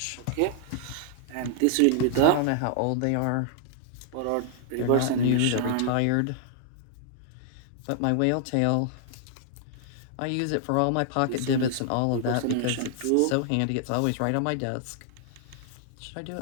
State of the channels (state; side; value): different; both; correlation -0.01